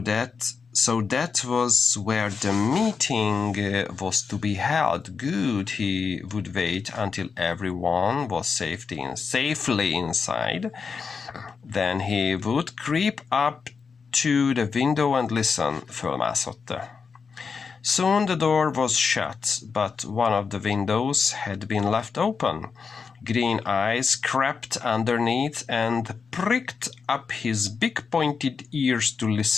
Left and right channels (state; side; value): quieter; right; 5.4 dB